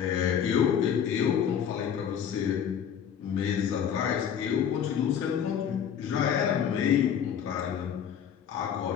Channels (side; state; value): right; quieter; 8.5 dB